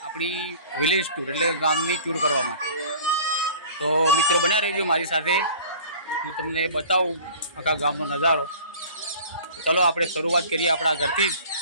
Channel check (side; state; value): both; inverted; correlation -0.45